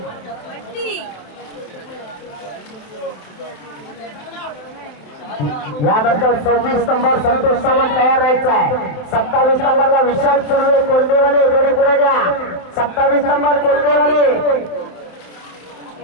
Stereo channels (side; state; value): right; late; 27 ms